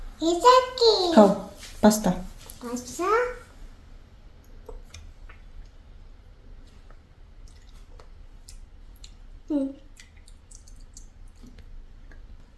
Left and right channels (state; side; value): identical; both; correlation 1.00